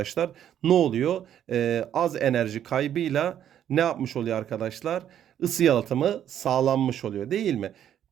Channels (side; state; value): left; quieter; 10.2 dB